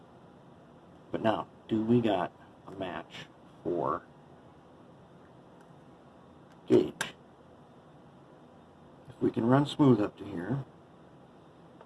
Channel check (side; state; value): both; identical; correlation 1.00